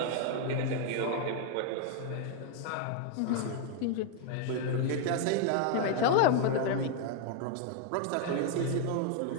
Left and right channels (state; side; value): different; both; correlation 0.00